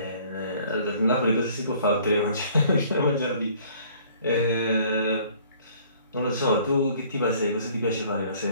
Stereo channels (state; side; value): inverted; both; correlation -0.55